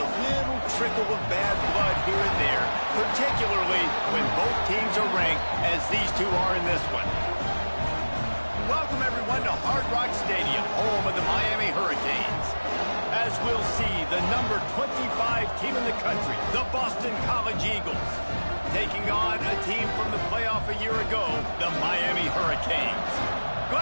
little trickle of bad blood here and there, particularly when both teams are ranked as these two are in this one. Welcome everyone to Hard Rock Stadium, home of the Miami Hurricanes. As we'll see, the number 25 team in the country, the Boston College Eagles, taking on a team from the playoff a year ago, the Miami Hurricanes.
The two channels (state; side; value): inverted; both; correlation -1.00